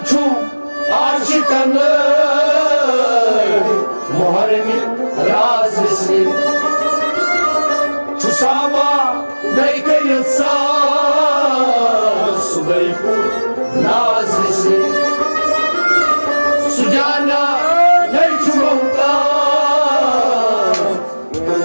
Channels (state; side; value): inverted; both; correlation -1.00